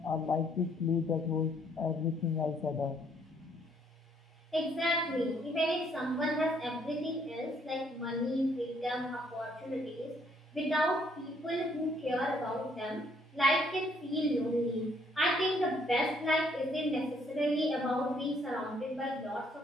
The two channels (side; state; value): both; normal; correlation 0.67